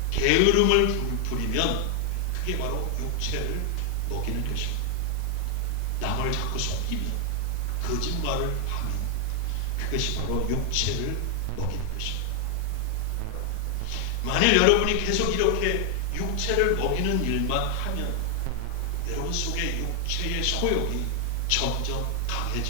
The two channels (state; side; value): different; both; correlation 0.00